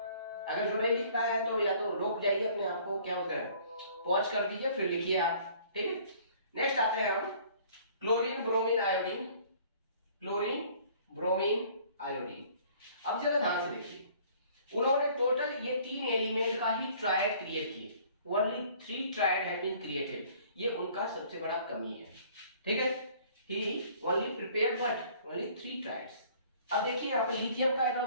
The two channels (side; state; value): both; inverted; correlation -0.55